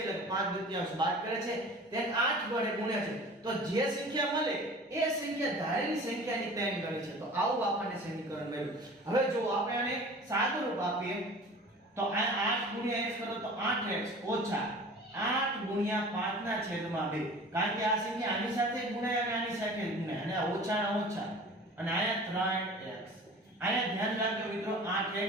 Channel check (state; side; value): normal; both; correlation 0.42